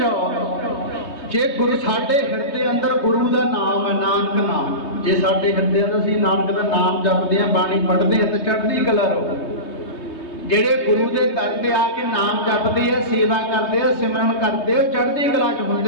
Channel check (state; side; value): late; right; 3.2 ms